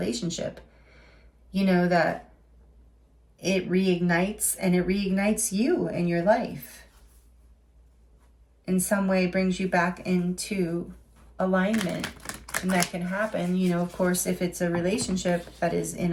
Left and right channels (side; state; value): both; identical; correlation 1.00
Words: You know, that it reignites, and it reignites you in your life. In some way, brings you back into alignment. And that can happen, you know, of course, if it's a relationship that is in